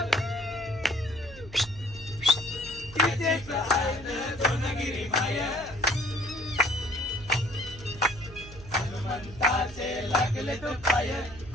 तिचेच ऐन दोनगिरी माय हनुमंताचे लागले तो पाय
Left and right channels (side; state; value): right; noise; hum, 16 dB below the sound